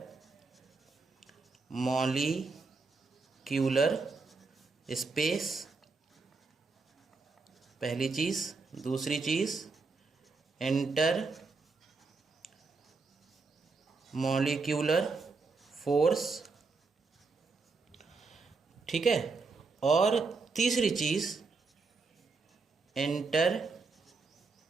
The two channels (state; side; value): quieter; left; 4.2 dB